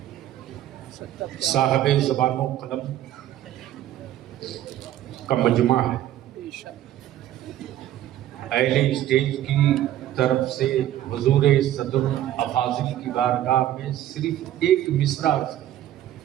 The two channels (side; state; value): left; quieter; 12.6 dB